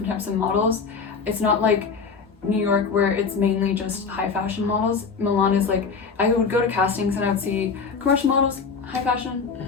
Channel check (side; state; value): right; quieter; 5.3 dB